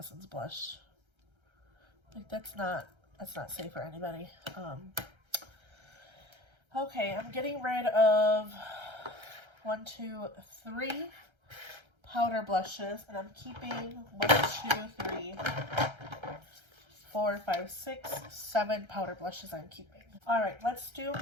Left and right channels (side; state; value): left; late; 1.3 ms